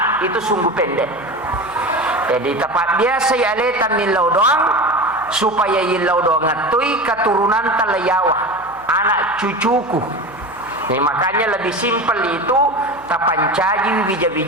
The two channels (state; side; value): noise; left; hum, 26 dB below the sound